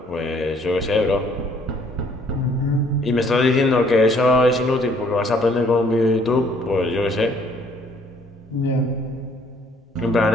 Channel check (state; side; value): normal; both; correlation 0.62